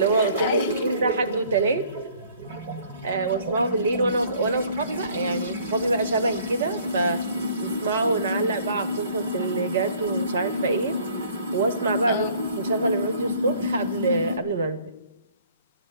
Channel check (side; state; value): both; inverted; correlation -0.57